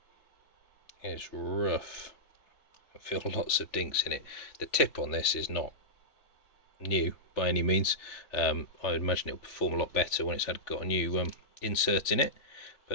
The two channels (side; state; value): right; late; 3.4 ms